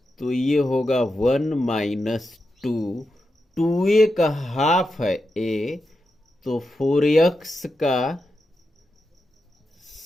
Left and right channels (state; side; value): normal; both; correlation 0.88